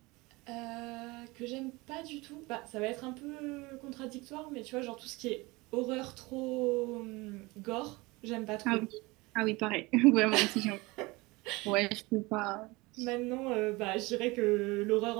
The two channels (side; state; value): left; quieter; 23.3 dB